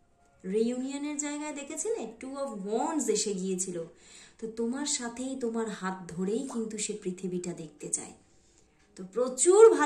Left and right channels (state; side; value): identical; both; correlation 1.00